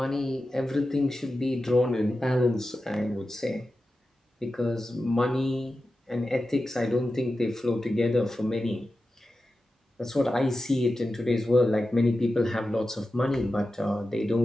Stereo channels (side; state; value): both; normal; correlation 0.92